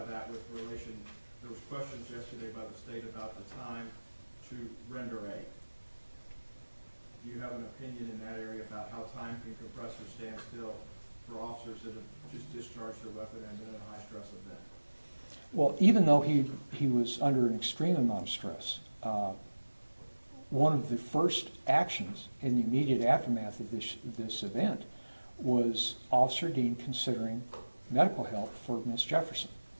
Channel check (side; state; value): both; inverted; correlation -1.00